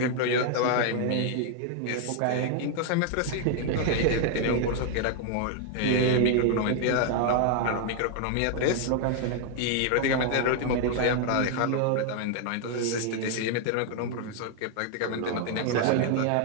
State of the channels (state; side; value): different; both; correlation 0.00